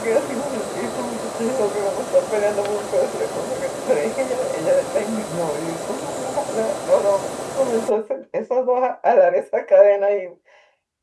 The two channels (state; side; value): identical; both; correlation 1.00